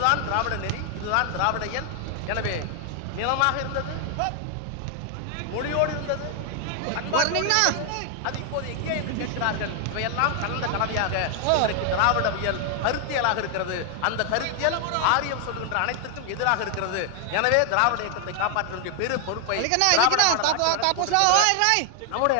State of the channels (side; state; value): both; different; correlation 0.00